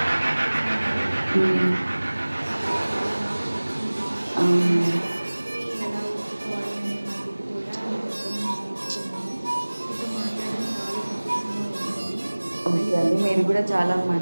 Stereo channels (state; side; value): inverted; both; correlation -1.00